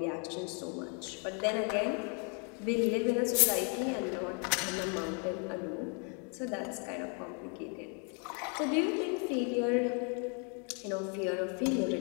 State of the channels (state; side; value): quieter; right; 38.6 dB